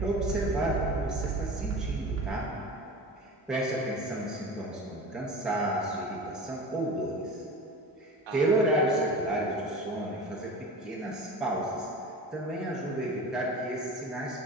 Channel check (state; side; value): normal; both; correlation 0.34